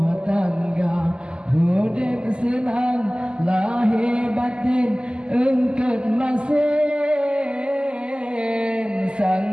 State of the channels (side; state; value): left; late; 0.049 ms